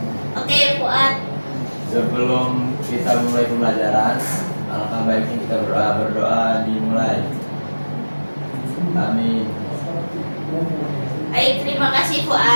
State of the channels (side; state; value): both; inverted; correlation -1.00